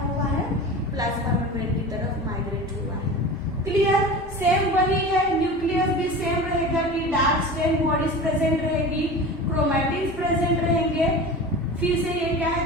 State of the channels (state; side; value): normal; both; correlation 0.33